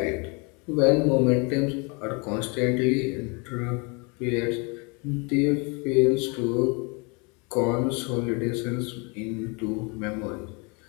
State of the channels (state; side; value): quieter; right; 31.5 dB